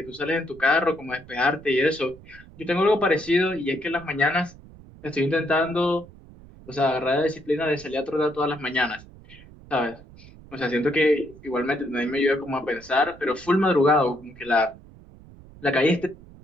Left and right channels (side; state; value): right; noise; rumble, 21 dB below the sound